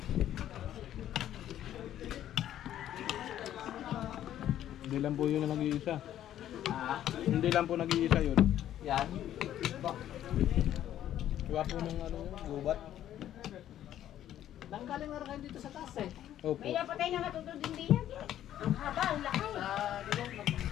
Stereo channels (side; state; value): right; quieter; 11.7 dB